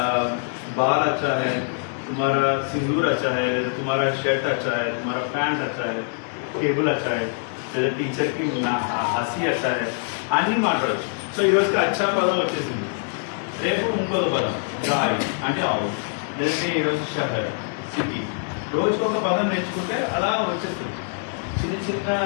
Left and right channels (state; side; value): silent; right; 63 dB below the other